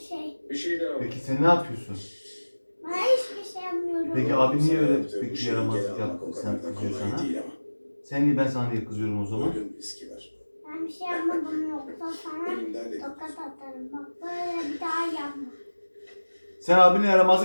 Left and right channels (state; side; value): inverted; both; correlation -1.00